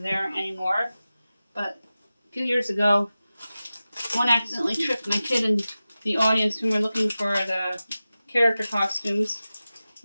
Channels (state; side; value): inverted; both; correlation -0.95